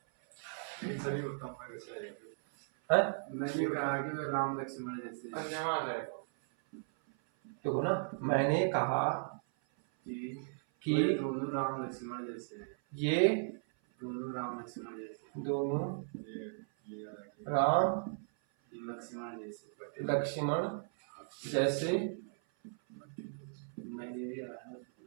कि वे राम लक्ष्मण जैसे हैं। देखो ना, मैंने कहा कि वे दोनों राम लक्ष्मण जैसे हैं। ये दोनों राम लक्ष्मण जैसे, दोनों राम लक्ष्मण जैसे। मैंने भी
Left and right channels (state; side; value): silent; left; 53 dB below the other